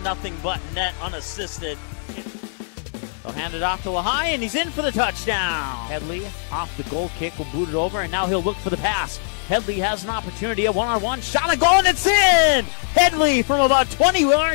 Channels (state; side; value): silent; right; digital silence